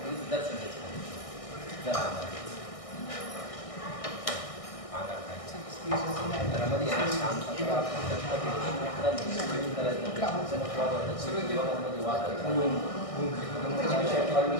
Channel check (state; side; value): late; right; 1.6 ms